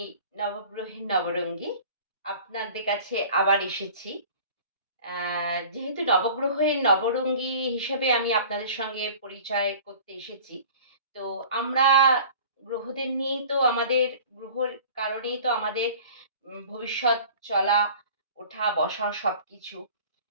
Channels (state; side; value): inverted; both; correlation -0.44